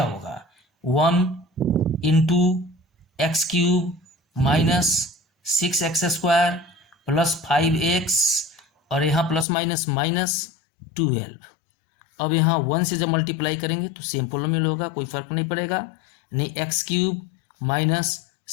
होगा, 1 × x³ - 6x² + 5x और यहाँ प्लस माइनस -12। अब यहाँ 1 से जब मल्टीप्लाई करेंगे तो सेम पोलिनोमियल होगा, कोई फर्क नहीं पड़ेगा। नहीं x³ -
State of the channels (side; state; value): right; drops out; at 9.5 s